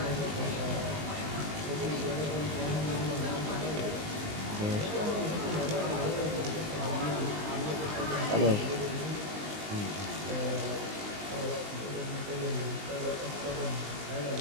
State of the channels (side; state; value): left; late; 19 ms